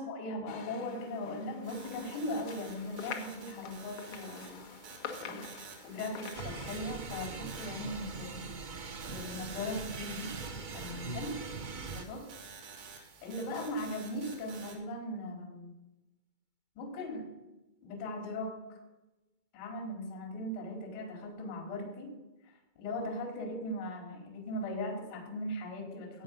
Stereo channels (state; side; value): late; right; 2.2 ms